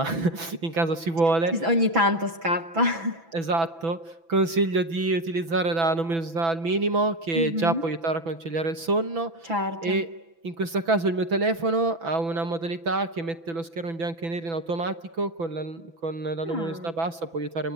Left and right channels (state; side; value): late; left; 6.0 ms